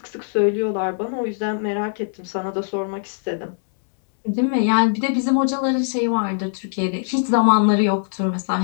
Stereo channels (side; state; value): right; silent; digital silence